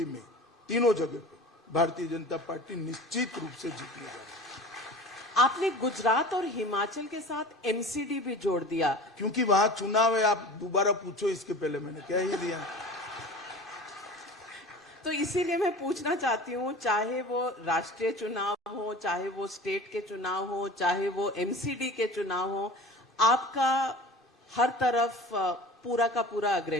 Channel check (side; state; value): both; normal; correlation 0.38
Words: में, तीनों जगह पे भारतीय जनता पार्टी निश्चित रूप से जीतने जा रही है। आपने गुजरात और हिमाचल के साथ एमसीडी भी जोड़ दिया क्योंकि वहां चुनाव है। आप दोबारा पूछो, इसके पहले मैंने कह ही दिया। तो इसीलिए मैं पूछना चाहती हूँ, चाहे वो राष्ट्रीय चुनाव हो, चाहे वो स्टेट के चुनाव हो, चाहे वो एमसीडी के चुनाव हो, आपका हर तरफ पूरा का पूरा